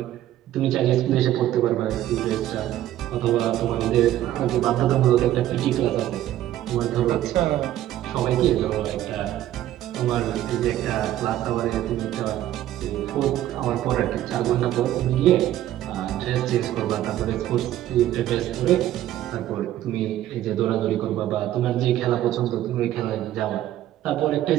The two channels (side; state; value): left; quieter; 13.1 dB